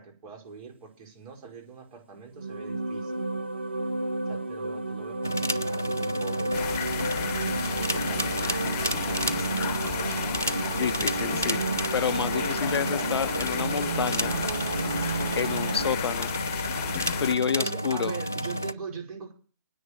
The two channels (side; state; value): both; inverted; correlation -0.59